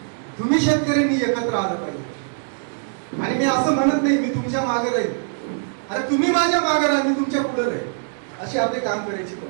तुम्ही शेतकऱ्यांनी एकत्र आलं पाहिजे. आणि मी असं म्हणत नाही मी तुमच्या मागे राहील, अरे तुम्ही माझ्या मागे राहा, मी तुमच्या पुढे राहील. अशी आपली काम करायची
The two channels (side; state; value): left; silent; digital silence